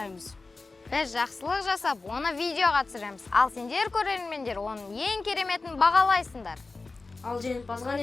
Біз жақсылық жасап, оны видеоға түсіреміз. Ал сендер көрермендер, оның ең кереметін бағалайсыңдар. Ал жеңімпазға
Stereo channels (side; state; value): right; quieter; 3.7 dB